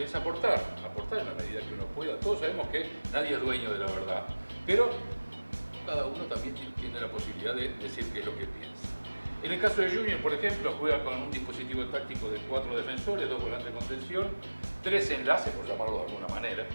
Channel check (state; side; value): inverted; both; correlation -1.00